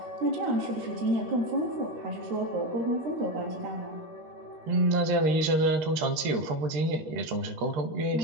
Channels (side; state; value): left; late; 13 ms